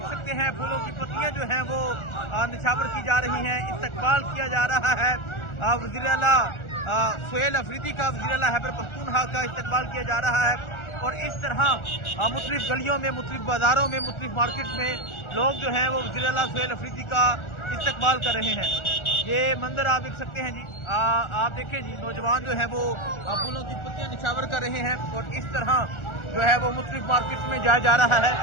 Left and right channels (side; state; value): right; late; 1.4 ms